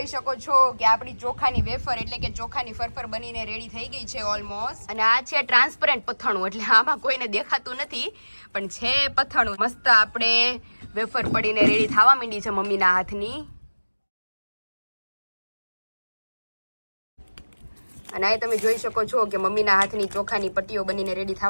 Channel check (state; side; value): inverted; both; correlation -1.00